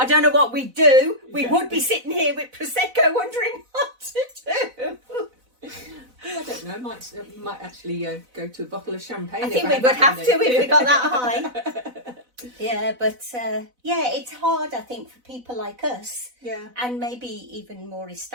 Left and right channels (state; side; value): late; left; 4.0 ms